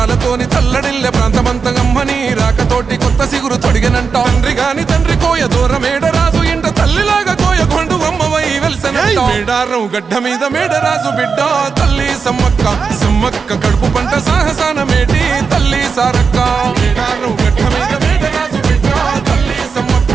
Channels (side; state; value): left; quieter; 5.4 dB